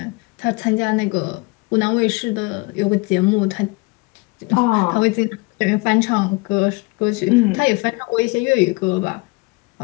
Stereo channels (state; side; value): quieter; right; 26.0 dB